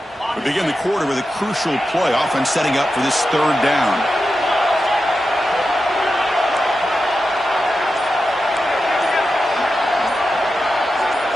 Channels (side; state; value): both; normal; correlation 0.90